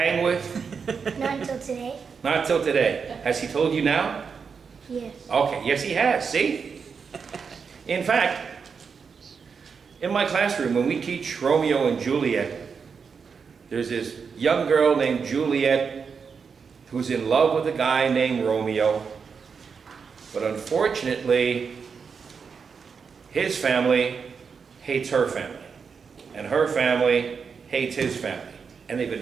with? Not until today. Not till today. Has he told you now? Yes. Okay, yes he has, see? In fact, in my classroom, when we teach Romeo and Juliet, there's this young girl named Juliet who's in love with a guy named Romeo. But unfortunately, his family hates her family. And her family hates his family. And they've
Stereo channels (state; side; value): quieter; left; 5.8 dB